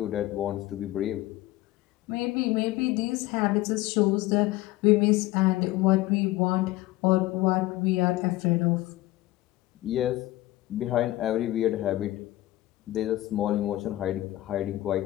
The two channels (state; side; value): quieter; right; 17.0 dB